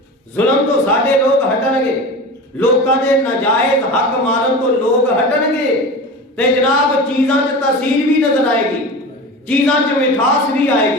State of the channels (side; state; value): both; normal; correlation 0.31